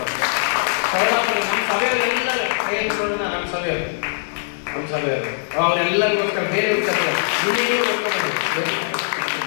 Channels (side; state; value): right; silent; digital silence